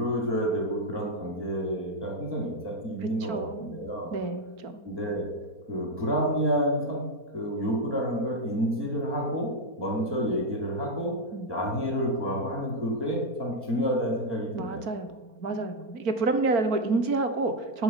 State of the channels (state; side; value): late; left; 4.3 ms